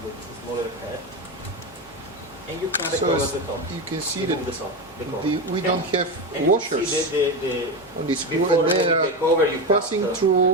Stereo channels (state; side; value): normal; both; correlation 0.17